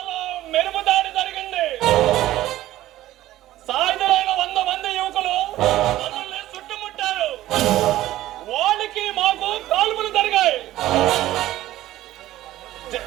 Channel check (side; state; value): left; quieter; 14.9 dB